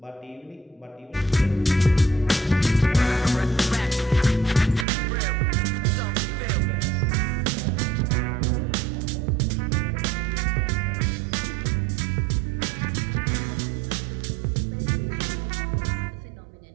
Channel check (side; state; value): left; drops out; at 4.9 s